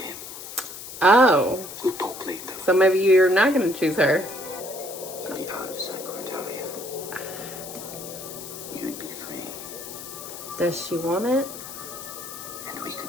Oh. We'll talk later. So maybe you're not going to choose her. In the out of sight, Cordelia. You'd be free, Does she want it? and we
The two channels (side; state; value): left; noise; hiss, 11 dB below the sound